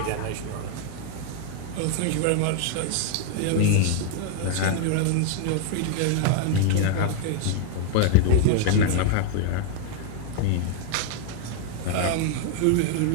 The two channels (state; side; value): different; both; correlation 0.00